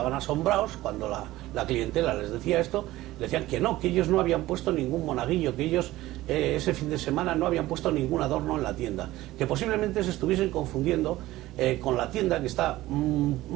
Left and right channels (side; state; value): left; quieter; 16.8 dB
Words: asombrados cuando la clientela les decía esto, le decían que no, que ellos no habían puesto ningún monaguillo, que ellos ese fin de semana no habían puesto ningún adorno en la tienda, que posiblemente se estuviesen confundiendo con la tienda que está